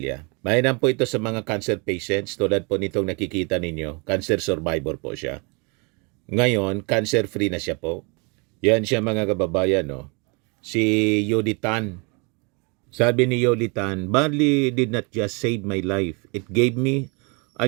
Mainam po ito sa mga cancer patients. Tulad po nitong nakikita ninyo. Cancer survivor po siya. Ngayon, cancer-free na siya po. Yan siya, mga kababayan, no? Si Yoli Tan. Sabi ni Yoli Tan, barley did not just save my life. It gave me a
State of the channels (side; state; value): left; quieter; 32.0 dB